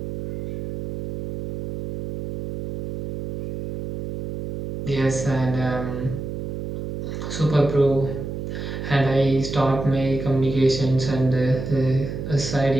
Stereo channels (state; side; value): noise; right; hum, 6 dB below the sound